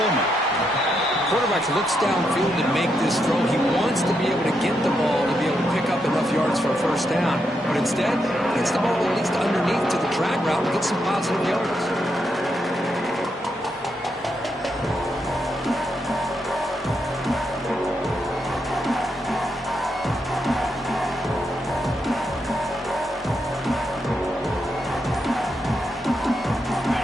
Quarterback looks downfield to make this throw. He wants to be able to get the ball to be able to pick up enough yards for a 1st down. But instead, gets the ball at least underneath to the drag route and gets some positive yards.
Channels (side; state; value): both; normal; correlation 0.81